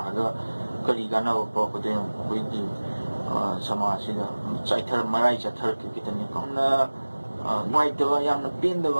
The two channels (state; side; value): inverted; both; correlation -1.00